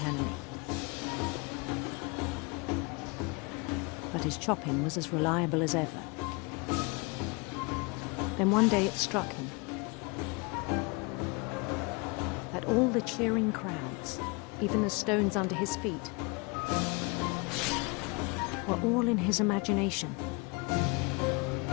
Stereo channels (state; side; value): quieter; right; 29.2 dB